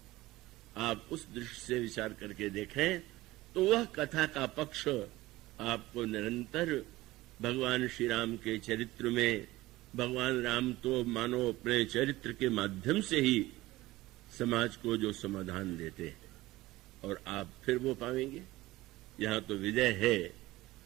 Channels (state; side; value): quieter; left; 18.2 dB